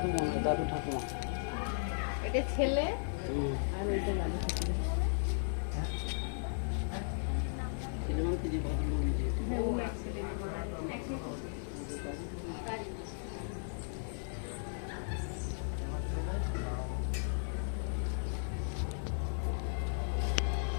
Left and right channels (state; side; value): silent; right; 54 dB below the other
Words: দাদু ঠাকুমা, এটা ছেলে আর এটা দাদু ঠাকুমা।